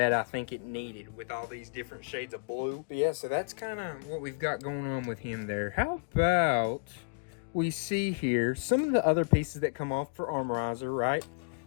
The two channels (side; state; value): right; quieter; 36.5 dB